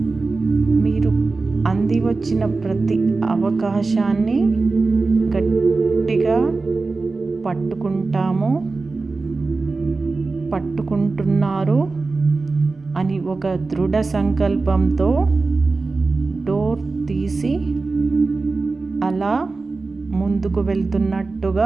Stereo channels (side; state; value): left; quieter; 3.8 dB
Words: మీరు అంది వచ్చిన ప్రతి అవకాశాన్ని గట్టిగా పట్టుకుంటున్నారు అని ఒక దృఢ సంకల్పంతో డోర్ తీసి అలా ముందుకు